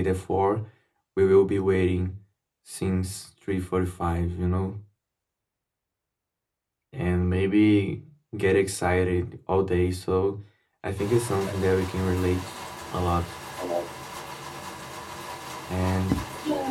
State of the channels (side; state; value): both; identical; correlation 1.00